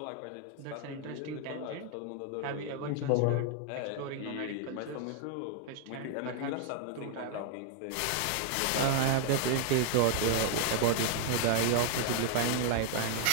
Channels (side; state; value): both; different; correlation 0.00